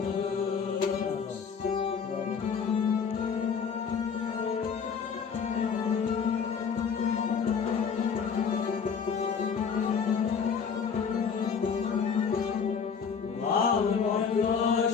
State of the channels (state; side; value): quieter; right; 6.4 dB